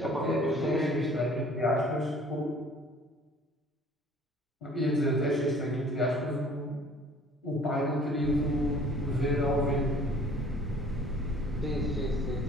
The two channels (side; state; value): both; normal; correlation 0.52